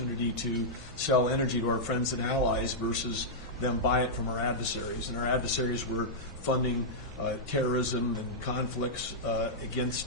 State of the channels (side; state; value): both; normal; correlation -0.09